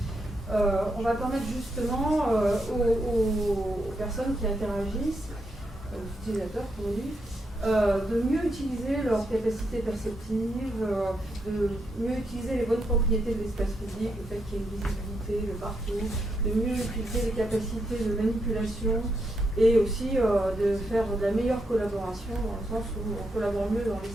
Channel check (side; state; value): both; normal; correlation 0.81